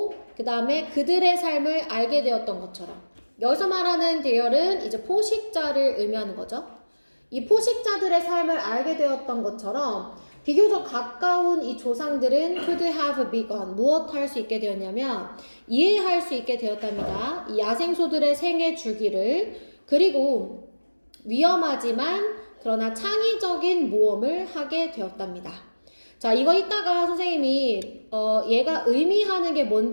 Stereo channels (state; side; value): inverted; both; correlation -1.00